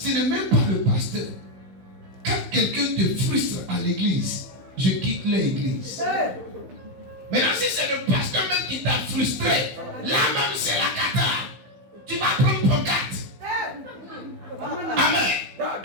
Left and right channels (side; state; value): left; late; 15 ms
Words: ce n'est même pas le pasteur. Quand quelqu'un te frustre à l'église, je quitte l'église. Maintenant, si c'est le pasteur même qui t'a frustré, là même c'est la cata. Tu vas prendre ton carte. Amen.